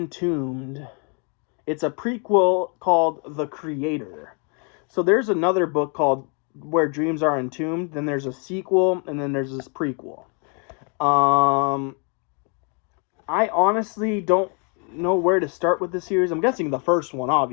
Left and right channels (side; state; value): right; quieter; 37.0 dB